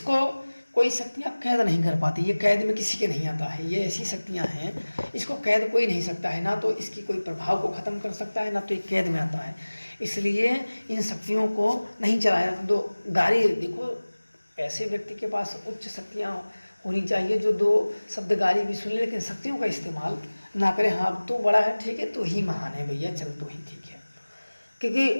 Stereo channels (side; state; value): both; inverted; correlation -1.00